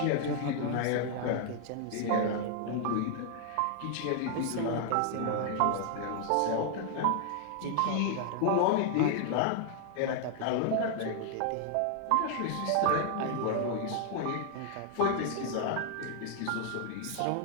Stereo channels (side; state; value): both; different; correlation 0.00